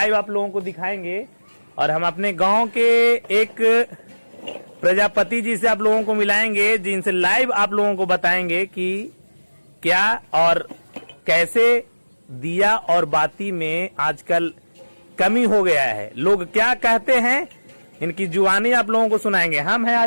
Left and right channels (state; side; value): inverted; both; correlation -1.00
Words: आप लोगों को दिखाएंगे। और हम अपने गांव के एक प्रजापति जी से आप लोगों को मिलाएंगे जिनसे लाइव आप लोगों को बताएंगे कि क्या और कैसे दिया और बाती में आजकल कमी हो गया है, लोग क्या कहते हैं, इनकी जुबानी आप लोगों को सुनाएंगे। हम हैं